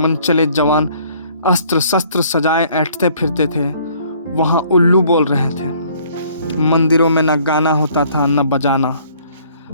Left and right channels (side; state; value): both; inverted; correlation -0.59